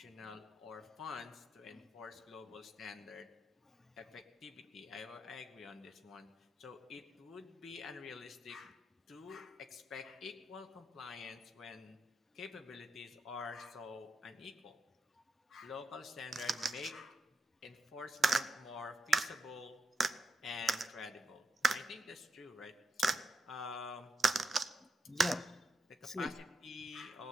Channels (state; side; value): normal; both; correlation 0.85